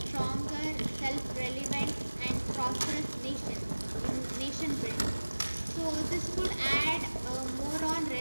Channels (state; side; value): inverted; both; correlation -1.00